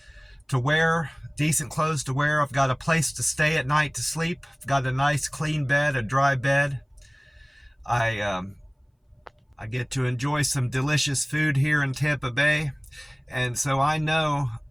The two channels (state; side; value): identical; both; correlation 1.00